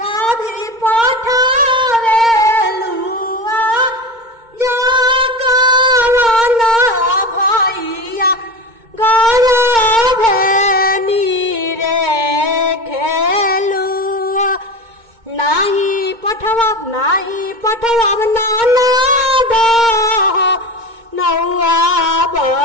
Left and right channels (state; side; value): late; left; 2.2 ms